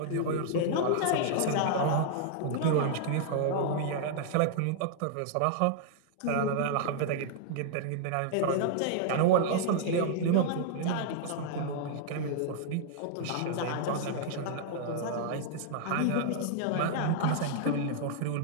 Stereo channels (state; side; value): different; both; correlation -0.01